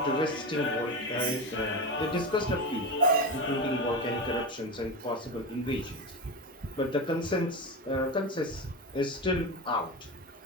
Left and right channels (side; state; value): both; normal; correlation 0.21